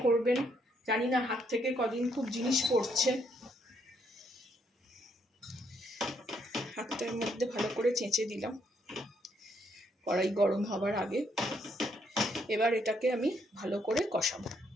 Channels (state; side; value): normal; both; correlation 0.73